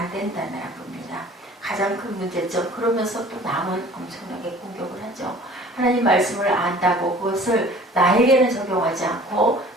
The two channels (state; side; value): normal; both; correlation 0.48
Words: 된다는 겁니다. 가장 큰 문제점 그러면서 또 남은 엄청나게 공격을 하죠. 하나님 말씀을 안다고 그것을 나에게는 적용하지 않고